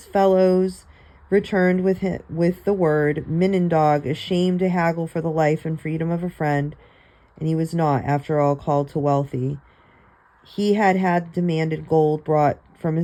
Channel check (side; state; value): both; identical; correlation 1.00